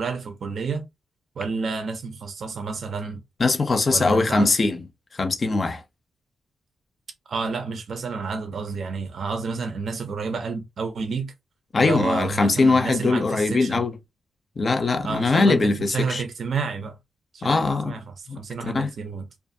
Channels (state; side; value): normal; both; correlation 0.86